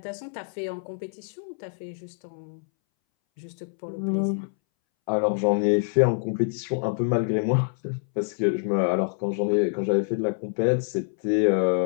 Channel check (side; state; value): right; silent; 61 dB below the other